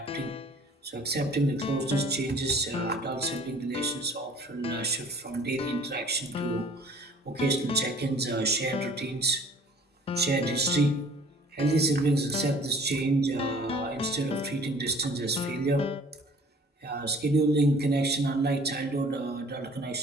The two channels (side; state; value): both; normal; correlation 0.51